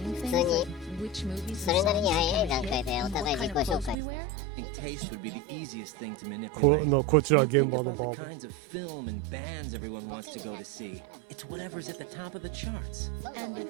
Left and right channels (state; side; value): drops out; left; at 4.0 s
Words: 普 things 通に like which movies そ and れなり songs に are 早い gonna 段階 hit でお and 互い what 自 kind 己 of 紹 clothes 介 we したら wear. 見てる Pace 人 would も be 見や the すいん easiest じゃな thing い to manipulate. こちら When 現 you 場 think の about バ the ーボン kinds of film and bands everyone ボ wants ケ to に go な to っちゃう see, から it's 自己 whatever's 紹 at the 介じゃな top く of the て charts. そもそも俺